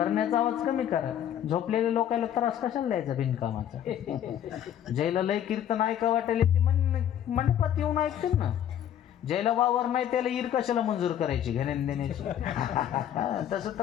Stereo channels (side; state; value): right; quieter; 10.4 dB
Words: आवाज कमी करा झोपलेल्या लोकांना त्रास कशाला द्यायचा बिनकामाचा ज्याला लय कीर्तन ऐका वाटेल ते मंडपात येऊन ऐकतील ना ज्याला वावर नाही त्याला ईर कशाला मंजूर करायची घेण्यान देण्याची. तसं